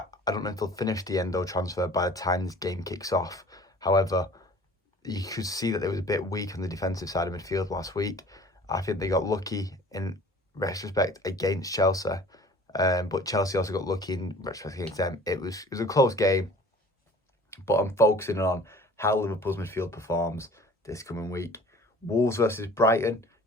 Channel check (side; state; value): both; normal; correlation 0.47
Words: don't know if they'll finish the Endo transfer by the time this game kicks off. However, you could see that they was a bit weak on the defensive side of midfield last week. I think they got lucky in retrospect against Chelsea. But Chelsea also got lucky in retrospect against them. It was a close game. But I'm focusing on how Liverpool's midfield performs this coming week. Wolves versus Brighton.